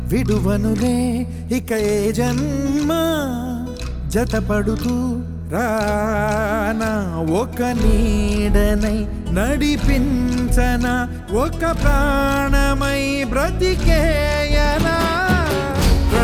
విడువనులే ఇక ఏ జన్మ జతపడుతూ రానా ఒక నీడనై నడిపించన ఒక ప్రాణమై బ్రతికేయనా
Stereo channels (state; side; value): identical; both; correlation 1.00